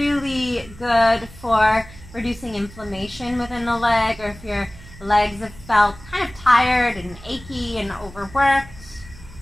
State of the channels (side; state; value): right; noise; hum, 19 dB below the sound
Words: good for reducing inflammation within the leg, or if your legs have felt kind of tired and achy and overworked.